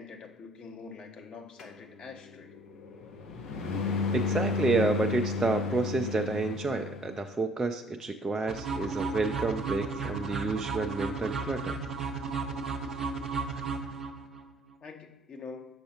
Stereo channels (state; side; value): normal; both; correlation 0.58